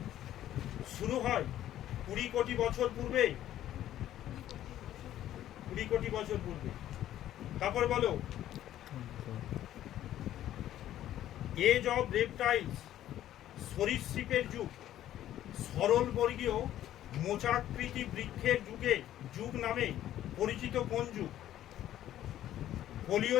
শুরু হয় 20 কোটি বছর পূর্বে। 20 কোটি বছর পূর্বে। তারপর বলো, এজ অফ রেপটাইলস, সরীসৃপের যুগ। সরলবর্গীয় মোচাকৃতি বৃক্ষের যুগ নামে পরিচিত কোন যুগ?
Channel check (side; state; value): right; quieter; 12.5 dB